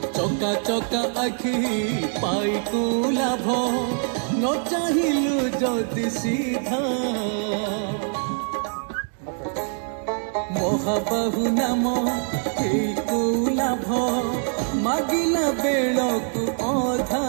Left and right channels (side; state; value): left; silent; 56 dB below the other